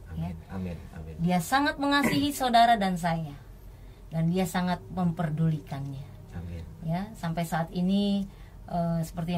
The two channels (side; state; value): both; identical; correlation 1.00